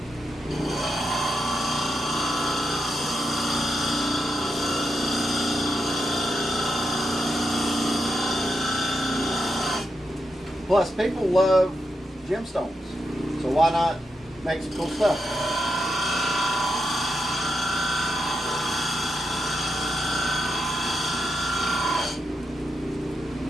Plus, people love gemstones, so why not make some cool stuff?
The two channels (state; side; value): normal; both; correlation 0.85